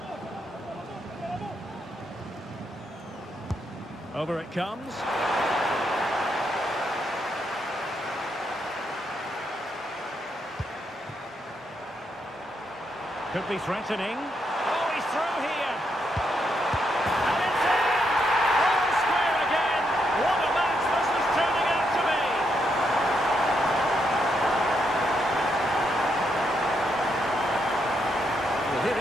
Over it comes. Could be threatening. Oh, he's through here. And it's in! All square again. What a match this is turning out to be. Well, here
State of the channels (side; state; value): both; normal; correlation 0.79